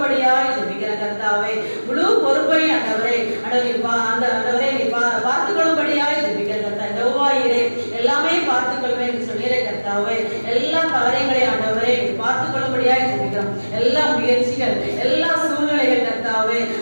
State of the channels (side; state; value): both; inverted; correlation -1.00